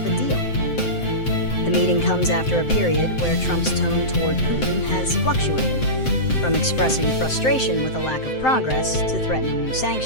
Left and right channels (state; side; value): late; right; 7.7 ms